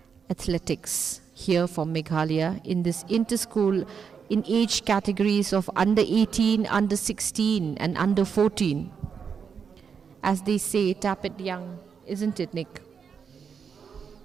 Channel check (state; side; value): quieter; left; 6.5 dB